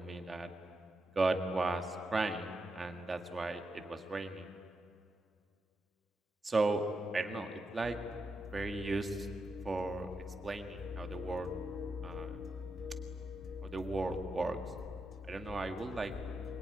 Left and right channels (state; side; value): normal; both; correlation 0.85